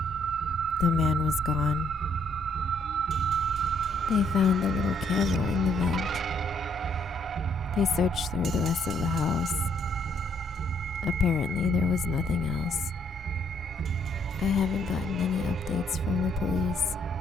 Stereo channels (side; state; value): both; normal; correlation 0.69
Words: the man was gone. They found the little camera in the vent. They searched through the rest of the house. Apparently, there was nothing else. I haven't gotten any updates from the police.